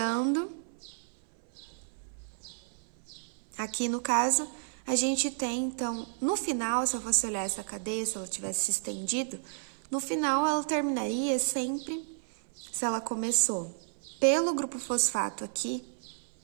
Aqui, no caso, a gente tem, então, no final, se eu fosse olhar essa cadeia, se ela tivesse se estendido, no final ela terminaria sempre, se ela começou pelo grupo fosfato aqui,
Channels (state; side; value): silent; left; 57 dB below the other